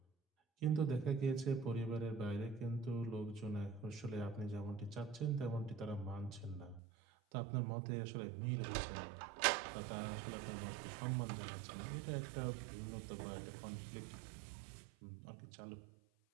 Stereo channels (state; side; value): drops out; left; at 6.8 s